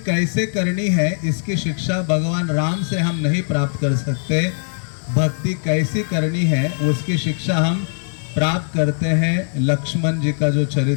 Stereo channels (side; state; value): right; silent; digital silence